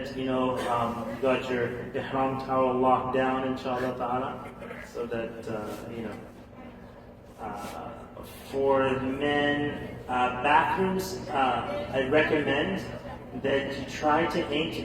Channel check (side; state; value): both; identical; correlation 1.00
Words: you got your ihram towel locked down, inshallah ta'ala, so that for men, bathrooms, I recommend that you try to aim to